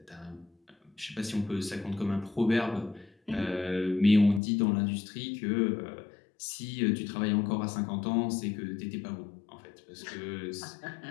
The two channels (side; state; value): right; drops out; at 4.4 s